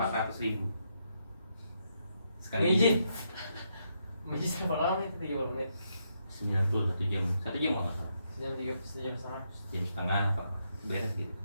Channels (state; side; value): inverted; both; correlation -0.79